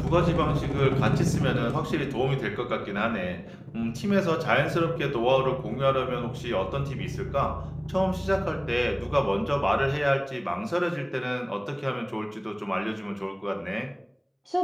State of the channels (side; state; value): both; identical; correlation 1.00